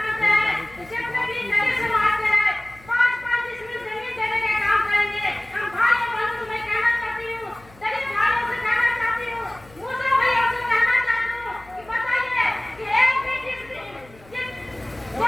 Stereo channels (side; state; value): left; noise; hum, 25 dB below the sound